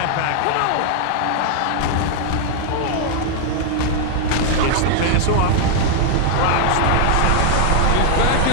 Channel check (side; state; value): both; different; correlation 0.00